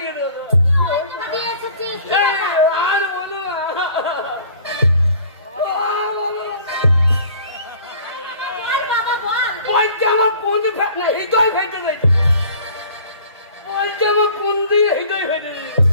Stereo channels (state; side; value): inverted; both; correlation -0.49